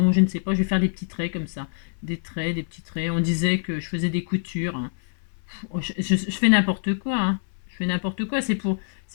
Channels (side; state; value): right; silent; 62 dB below the other